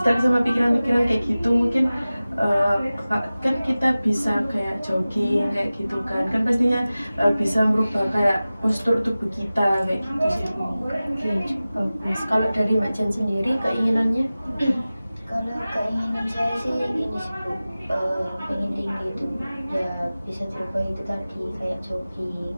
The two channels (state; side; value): inverted; both; correlation -0.97